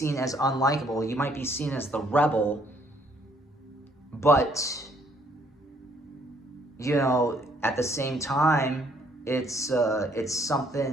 as unlikable. You might be seen as the rebel. But, you know, at the same time, it's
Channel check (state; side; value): normal; both; correlation 0.66